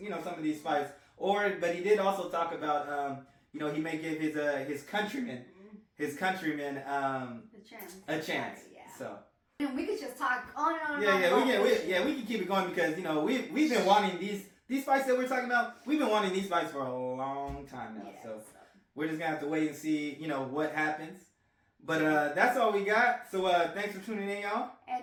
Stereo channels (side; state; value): both; identical; correlation 1.00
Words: of these fights. But he did also talk about, he may give his countrymen a chance. Yeah. So. And we could just talk on and on. We can keep it going because we've been wanting these fights that we're talking about. We've been wanting these fights for a long time now. Yeah, so we're just gonna have to wait and see, what happens. But that's all we got. So thanks for tuning in, y'all.